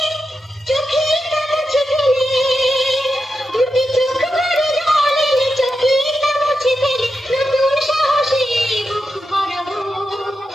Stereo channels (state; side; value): normal; both; correlation 0.88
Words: চোখে মুছে ফেলে, দুটি চোখ ভরে জল এলে চোখে মুছে ফেলে, নতুন সাহসে বুক ভরাবো,